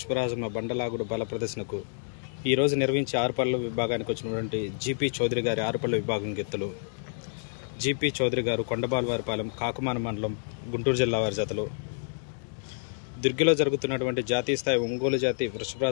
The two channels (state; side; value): silent; right; digital silence